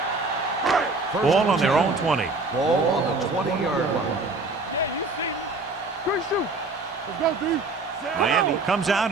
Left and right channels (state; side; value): quieter; left; 3.4 dB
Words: Ball on their own 20. Ball on the 20-yard line. Yeah, you see me. Quick shoot. Let's go, D. Miami comes out